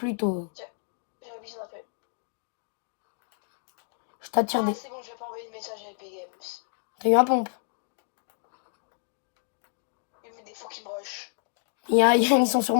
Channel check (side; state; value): right; silent; 58 dB below the other